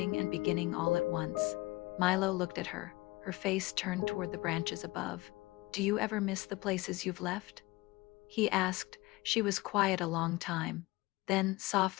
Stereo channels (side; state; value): right; quieter; 21.2 dB